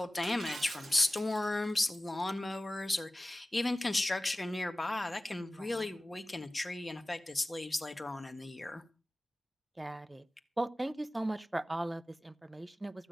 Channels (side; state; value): both; normal; correlation 0.97